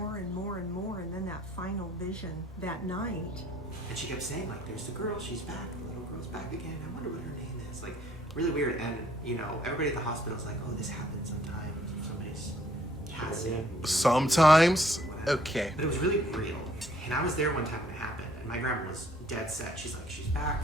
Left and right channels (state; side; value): normal; both; correlation 0.62